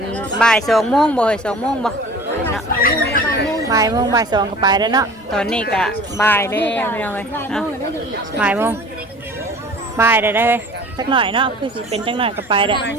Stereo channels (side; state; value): both; normal; correlation 0.44